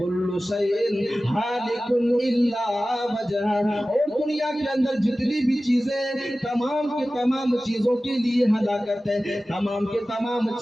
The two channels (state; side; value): normal; both; correlation 0.96